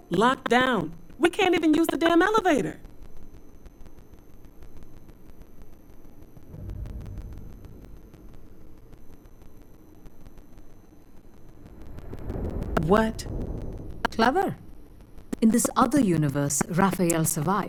locked down. We can't even use the damn elevator. What? Clever. In this other universe, Raphael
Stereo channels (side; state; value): both; identical; correlation 1.00